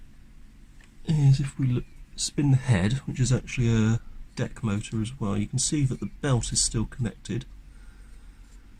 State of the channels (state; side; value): identical; both; correlation 1.00